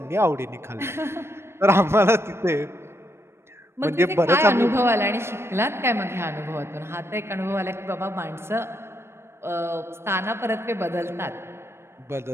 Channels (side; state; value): left; late; 0.12 ms